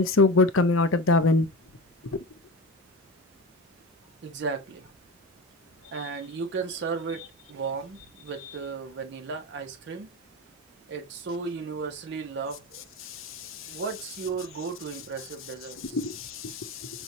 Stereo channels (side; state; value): both; normal; correlation 0.27